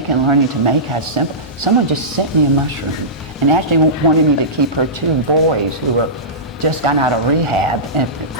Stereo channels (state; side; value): normal; both; correlation -0.19